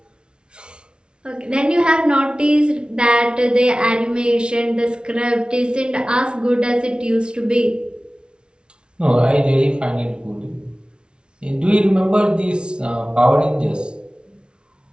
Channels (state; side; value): late; left; 0.056 ms